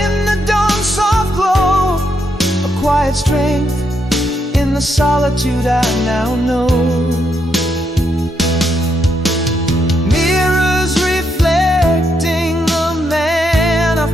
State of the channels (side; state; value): both; normal; correlation 0.79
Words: the dawn's soft glow, a quiet strength in the solitude I now know. Mirrors reflecting the man